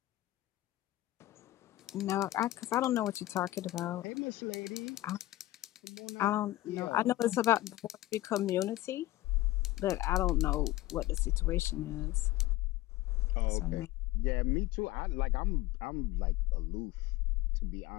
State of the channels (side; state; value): right; quieter; 16.8 dB